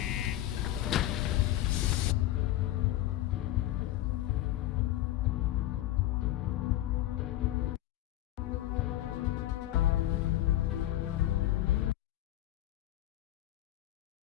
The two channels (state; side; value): quieter; right; 14.4 dB